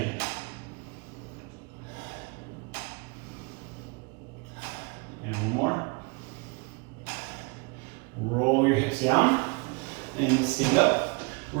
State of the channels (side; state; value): left; quieter; 29.7 dB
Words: And one more. Roll your hips down and stand up.